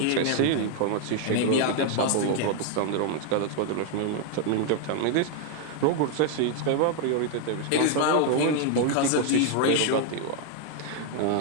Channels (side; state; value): both; different; correlation 0.00